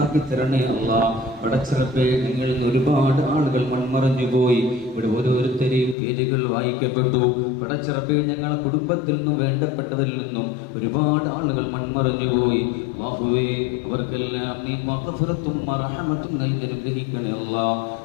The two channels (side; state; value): right; drops out; at 6.0 s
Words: തരണേ അല്ലാഹ്. പടച്ചറബ്ബേ, നിങ്ങളിൽ നിന്ന് ഒരുപാട് ആളുകൾ മൺമറഞ്ഞു പോയി. ഇവിടെ ഓരോരുത്തരെയും പേരുകൾ വായിക്കപ്പെട്ടു. പടച്ചറബ്ബേ, ഞങ്ങൾ കുടുംബത്തിൽ നിന്നും വേണ്ടപ്പെട്ടവരിൽ നിന്നും ഒരുപാട് ആളുകൾ മൺമറഞ്ഞു പോയി. അല്ലാഹുവേ, അവർക്കെല്ലാം നീ മഗ്ഫിറത്തും റഹ്മത്തും നൽകി അനുഗ്രഹിക്കണേ അല്ലാഹ്.